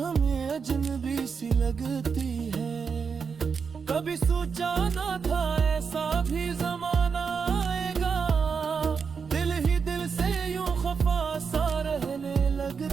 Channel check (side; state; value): left; quieter; 5.8 dB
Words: अजनबी सी लगती है। कभी सोचा ना था ऐसा भी जमाना आएगा, दिल ही दिल से यूं खफा सा रहने